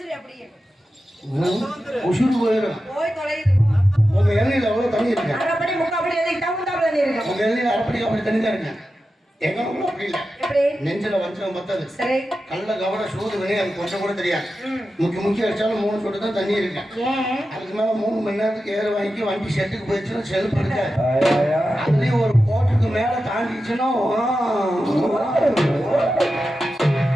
உசுறு போயிடும். போய் தொலையுது உங்க இளநீர் எவ்வளவு தண்ணி இருக்கு? அரைப்படி முக்காப்படி எதுக்கு தகுந்தாப்புல தண்ணி இருக்கும். உங்க இளநீர் அரைப்படி அப்படி தண்ணி தான் இருக்கு. எங்க ஊர்ல அப்படி இல்லை. எப்படி நெஞ்சில வஞ்சம் பத்தது. சரி கல்ல கவட சூது வினை அது கொஞ்சம் கூட தெரியாது. முக்கி அடிச்சாலும் 3 சொட்டு தான் தண்ணி இருக்கு. ஏன் அதுக்கு மேல 3 மணி நேரத்துக்கு ஏற வாங்கி வண்டி செட்டுக்கு போயிடுச்சுன்னா செல்ஃப் இருக்காது. அதுலயும் ஒரு கோட்டுக்கு மேல தாண்டிச்சுன்னா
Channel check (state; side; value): normal; both; correlation 0.91